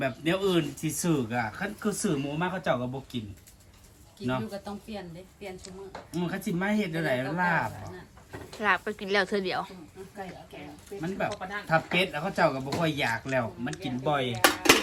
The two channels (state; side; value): identical; both; correlation 1.00